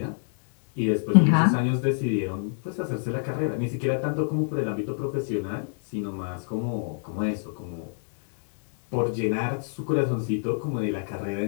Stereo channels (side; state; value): right; silent; digital silence